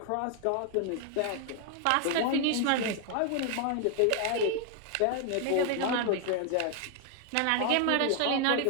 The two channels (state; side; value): different; both; correlation 0.00